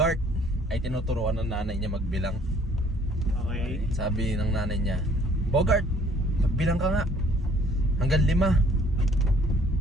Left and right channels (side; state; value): both; normal; correlation 0.59